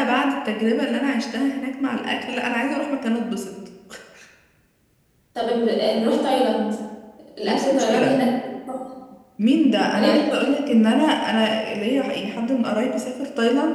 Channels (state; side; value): identical; both; correlation 1.00